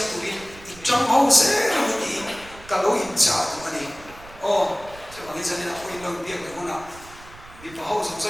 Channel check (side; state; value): right; noise; rumble, 20 dB below the sound